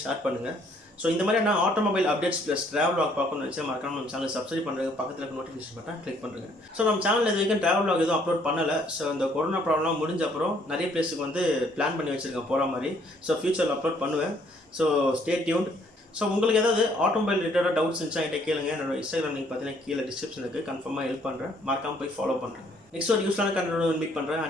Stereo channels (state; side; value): normal; both; correlation 0.64